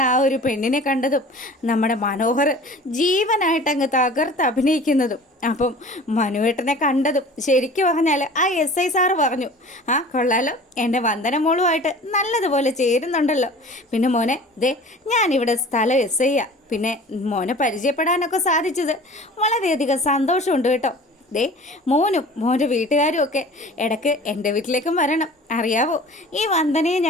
ആ ഒരു പെണ്ണിനെ കണ്ടതും നമ്മുടെ മനോഹർ ജീവനായിട്ടങ്ങ് തകർത്ത് അഭിനയിക്കുന്നതും. അപ്പം മനുവേട്ടനെ കണ്ടതും ശരിക്കും പറഞ്ഞാൽ ആ SI സാറ് പറഞ്ഞു, ആ കൊള്ളാലോ, എൻ്റെ വന്ദന മോളുമായിട്ട് നല്ലതുപോലെ ചേരുന്നുണ്ടല്ലോ. പിന്നെ മോനെ ദേ ഞാനിവിടെ സ്ഥലം SI പിന്നെ മോനെ പരിചയപ്പെടാനൊക്കെ സാധിച്ചത് വളരെയധികം സന്തോഷമുണ്ട് കേട്ടോ. ദേ മോനും മോൻ്റെ വീട്ടുകാരും ഒക്കെ ഇടയ്ക്ക് എൻ്റെ വീട്ടിലേക്കും വരണം. അറിയാവോ, ഈ വന്ദനയെ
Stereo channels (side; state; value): both; normal; correlation 0.43